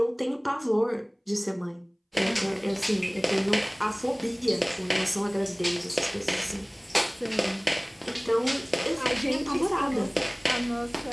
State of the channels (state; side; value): identical; both; correlation 1.00